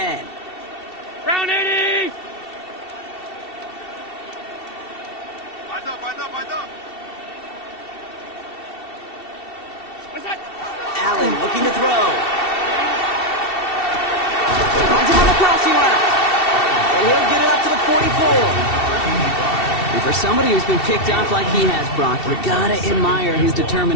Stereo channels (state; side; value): late; right; 2.7 ms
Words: Round 80! Allen looking to throw. Finds him on the crossing route. And he'll get it up to the 44. And for somebody who's been picked off like he has, Brock, you gotta admire his